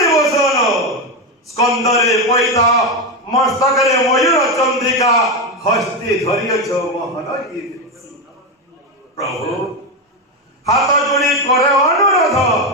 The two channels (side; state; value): both; normal; correlation 0.11